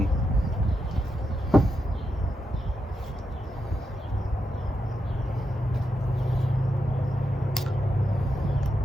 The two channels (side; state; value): both; normal; correlation 0.85